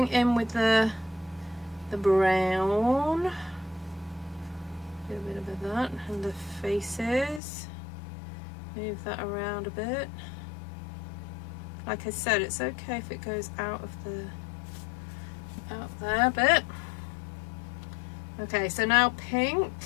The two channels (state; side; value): drops out; right; at 7.4 s